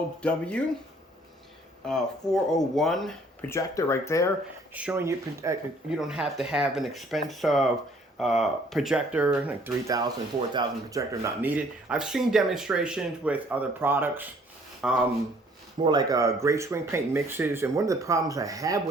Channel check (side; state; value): both; normal; correlation 0.59